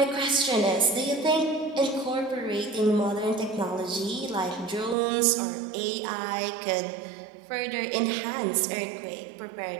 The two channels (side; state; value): left; drops out; at 5.0 s